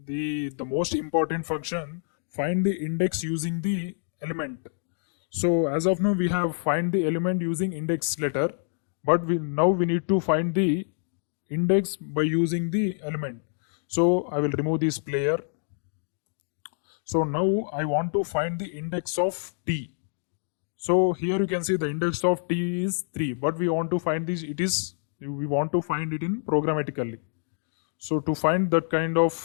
the most important function, find the index using the element. So as of now we have find the element using index letter, but now we need to find the index by using the element. So I will remove this player. So now I want to find the index of t. So here you can see the index of t is 3, but we want to find this, we want to find it in programmatically. So to find that kind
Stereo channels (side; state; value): right; silent; digital silence